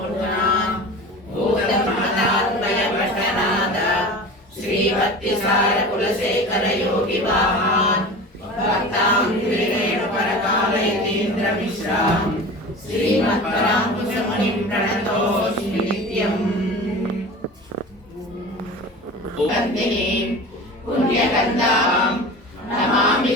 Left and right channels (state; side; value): normal; both; correlation 0.35